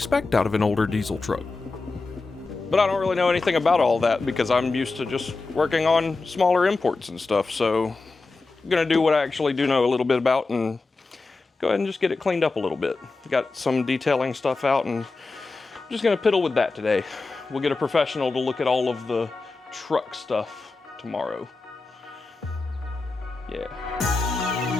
out of an older diesel truck. But I don't really know anything about all that because I'm used to just working on smaller imports and stuff, so I'm gonna do what I actually do know a little bit about and go ahead and just get it cleaned up a little bit. Got some detailing stuff out and I'm just gonna piddle with that today. We'll get a professional to look at all of the truck stuff tomorrow. Yeah.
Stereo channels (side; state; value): right; quieter; 3.7 dB